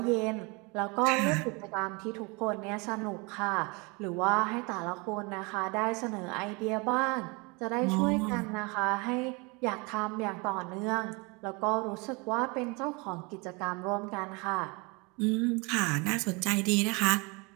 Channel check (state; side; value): quieter; left; 28.6 dB